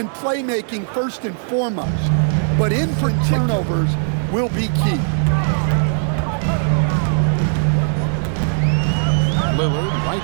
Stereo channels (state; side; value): silent; left; 62 dB below the other